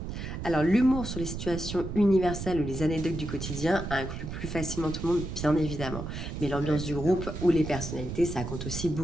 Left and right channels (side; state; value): right; noise; rumble, 6 dB below the sound